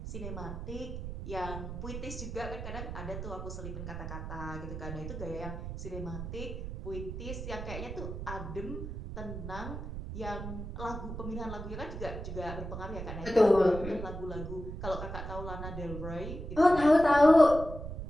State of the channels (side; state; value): right; noise; rumble, 7 dB below the sound